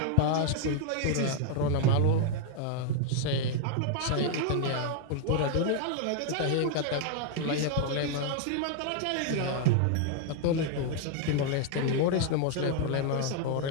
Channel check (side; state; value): both; different; correlation 0.00